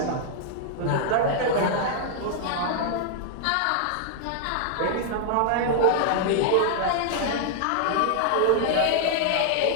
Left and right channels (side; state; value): both; different; correlation -0.01